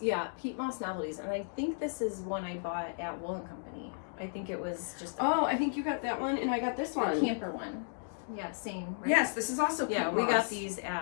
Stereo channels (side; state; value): right; silent; digital silence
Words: Yeah, Pete Moss Novelties. And I think this is one I bought at Wool & Company. I think it was just I think you got that one and I got this one. A camper one. Yeah, same. Right? Yes, this is also Pete Moss. Yeah, we got these